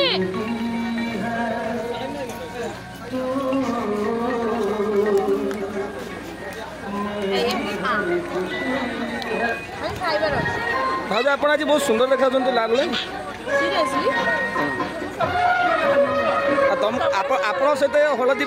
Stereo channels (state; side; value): identical; both; correlation 1.00